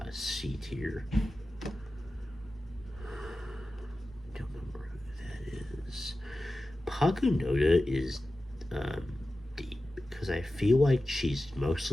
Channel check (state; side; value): normal; both; correlation 0.94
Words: C tier. Don't remember who that is. Pakunoda is D because I feel like she's